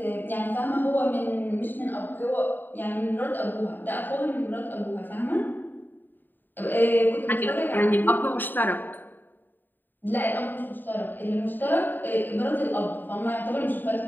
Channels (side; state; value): right; late; 0.091 ms